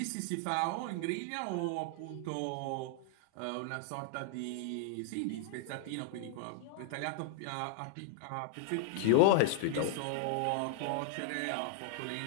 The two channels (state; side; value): different; both; correlation 0.00